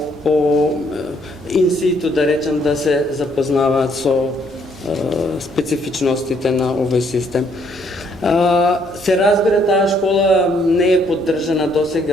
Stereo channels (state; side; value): normal; both; correlation 0.68